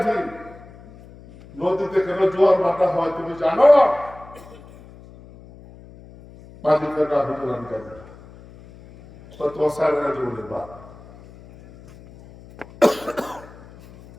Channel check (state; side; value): noise; left; hum, 21 dB below the sound